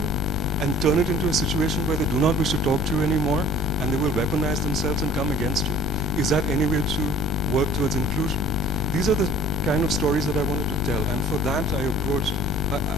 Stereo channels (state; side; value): noise; left; rumble, 3 dB below the sound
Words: and turn it into a situation where they do not wish to talk to you anymore, and they will weaponize themselves and come against you. Is that any way to work towards inclusion? These are the kind of stories that I wanted to tell, and for that I approached,